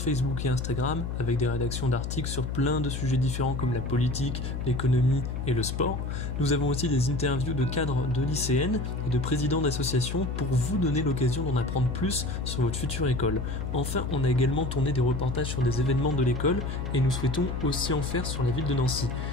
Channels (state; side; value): noise; left; hum, 4 dB below the sound